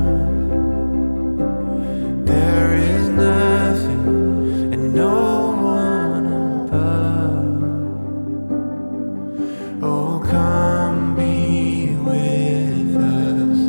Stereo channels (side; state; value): both; inverted; correlation -1.00